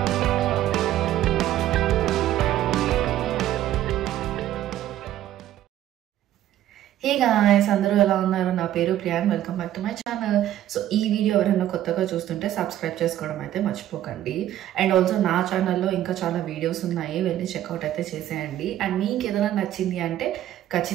హే గాయ్స్, అందరూ ఎలా ఉన్నారు? నా పేరు Priyan. Welcome back to my channel. So ఈ వీడియో ఎవరైనా కొత్తగా చూస్తుంటే సబ్స్క్రైబ్ చేసుకోవడం అయితే మర్చిపోకండి. అండ్ ఆల్సో నా ఛానల్లో ఇంకా చాలా వీడియోస్ ఉన్నాయి, వెళ్ళి చెక్అవుట్ అయితే చేసేయండి. అండ్ మీకు ఏదైనా నచ్చింది అంటే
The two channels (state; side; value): quieter; left; 12.6 dB